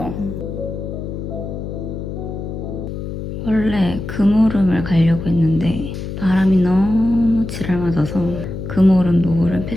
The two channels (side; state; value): left; noise; hum, 7 dB below the sound